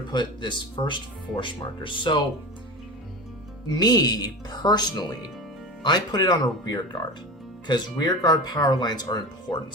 put this first force marker. So me personally, I put it on a rear guard because rear guard power lines are important.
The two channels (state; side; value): normal; both; correlation 0.28